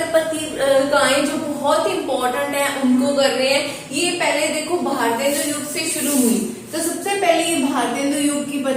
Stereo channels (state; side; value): identical; both; correlation 1.00